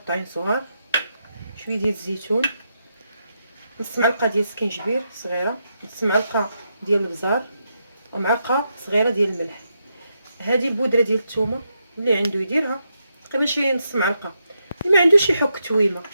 صغار، شويه ديال الزيتون، نص معلقه ديال السكينجبير صغيره، نص معلقه ديال البزار، ومعلقه صغيره ديال الملح. هذه البودره ديال الثومه اللي عنده يديرها، تقريبا شي نص معلقه، اللي ما عندوش يحك تويمه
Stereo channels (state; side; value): inverted; both; correlation -0.83